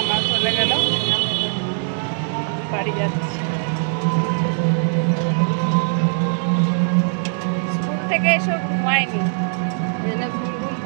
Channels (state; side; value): silent; left; 60 dB below the other